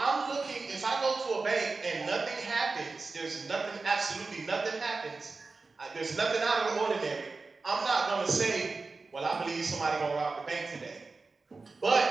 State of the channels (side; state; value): left; quieter; 3.9 dB